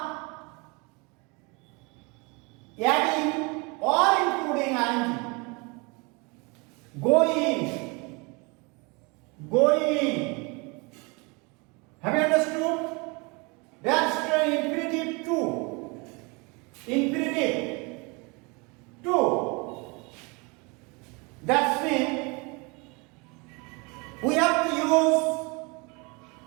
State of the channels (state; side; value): quieter; left; 29.0 dB